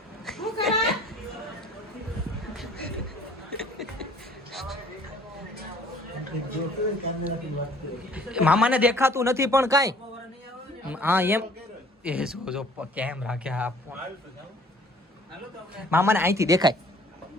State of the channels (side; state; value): both; normal; correlation 0.54